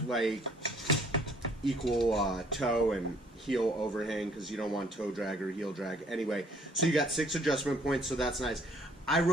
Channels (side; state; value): both; normal; correlation 0.60